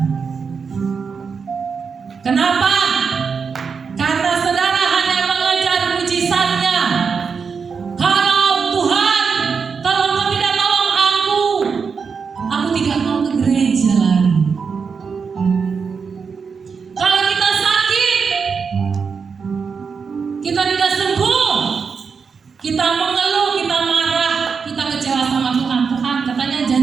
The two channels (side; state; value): left; quieter; 5.7 dB